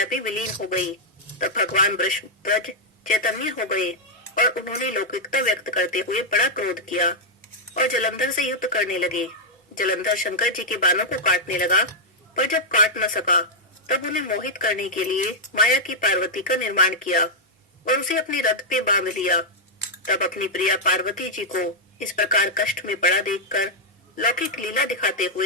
भी विलीन हो गई। तब भगवान वृषध्वज चैतन्य हो गए और उन्होंने लौकिकता व्यक्त करते हुए बड़ा क्रोध किया और जलंधर से युद्ध करने लगे। जलंधर शंकर जी के बाणों को काटने लगा, पर जब काट न सका तब उन्हें मोहित करने के लिए माया की पार्वती का निर्माण किया और उसे अपने रथ पे बांध लिया। तब अपनी प्रिया पार्वती जी को इस प्रकार कष्ट में पड़ा देखकर लौकिक लीला दिखाते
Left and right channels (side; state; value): both; normal; correlation -0.04